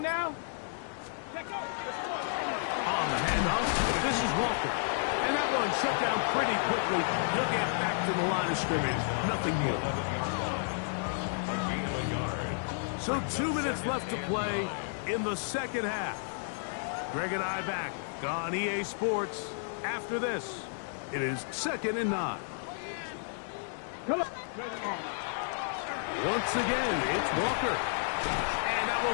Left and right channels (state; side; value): silent; right; digital silence